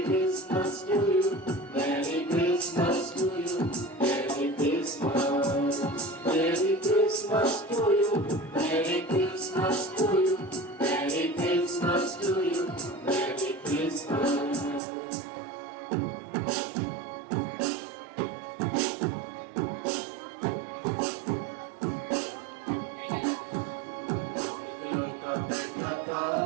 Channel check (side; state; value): left; drops out; at 14.8 s